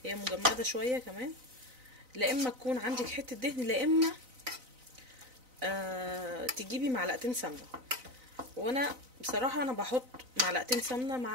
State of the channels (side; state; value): left; late; 4.0 ms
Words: هي مجمده شويه كمان، لا اما تكون عندك حته دهن، لا اما تجيبي معلقتين سمنه. وانا بصراحه انا بحط معلقتين